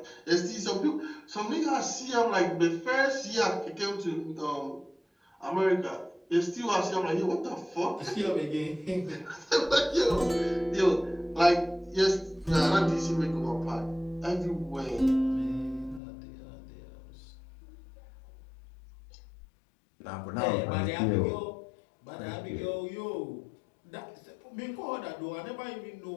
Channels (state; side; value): drops out; right; at 16.0 s